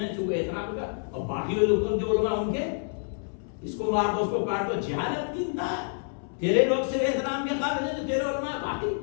چونکہ احترام کا, اور باقی لوگ جو علماء ان کے اس کو مار دو, اس کو کاٹ دو. جہالت کی انتہا. تیرے لوگ سے احترام کے قابل ہیں جو تیرے علماء, باقی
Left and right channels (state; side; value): silent; right; 59 dB below the other